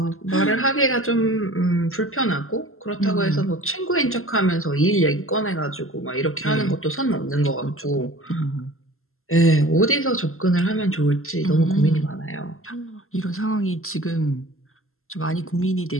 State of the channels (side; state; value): right; late; 0.62 ms